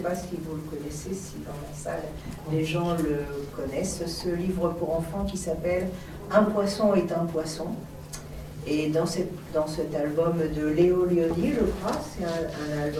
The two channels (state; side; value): identical; both; correlation 1.00